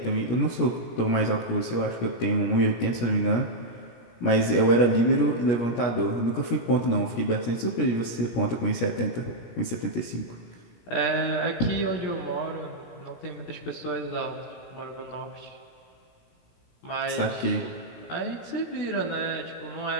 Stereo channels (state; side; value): late; right; 17 ms